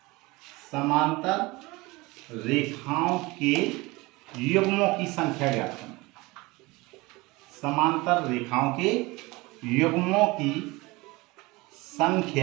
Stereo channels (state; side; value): quieter; left; 22.8 dB